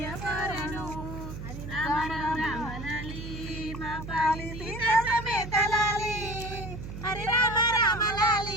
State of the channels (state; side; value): noise; right; hum, 9 dB below the sound